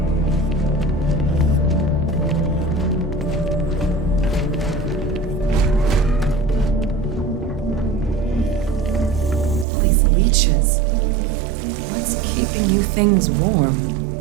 These leeches. What's keeping you things warm?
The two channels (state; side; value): drops out; left; at 9.7 s